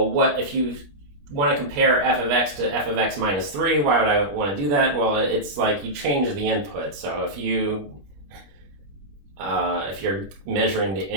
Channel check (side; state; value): left; late; 20 ms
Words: what if you want to compare f of x to f of x minus 3, why would I want to do that? Well, it's like you change the input. So if you're measuring the